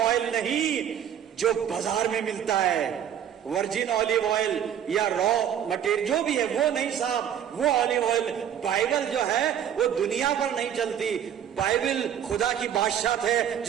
नहीं जो बाजार में मिलता है। वर्जिन ऑलिव ऑयल या रॉ मटेरियल जो भी है वो नहीं साहब, वो ऑलिव ऑयल। बाइबल जो है वो दुनिया पर नहीं चलती, बाइबल खुदा की बादशाह है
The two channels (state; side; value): quieter; left; 9.6 dB